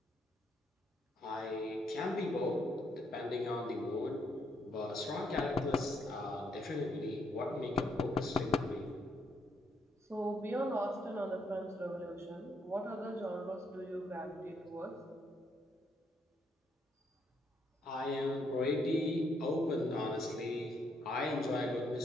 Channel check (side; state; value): both; normal; correlation 0.74